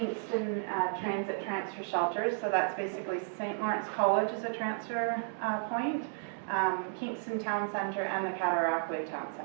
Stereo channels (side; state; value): left; silent; digital silence